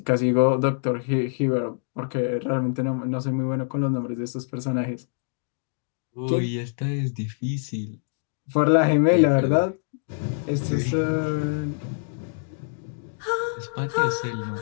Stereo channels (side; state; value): right; silent; digital silence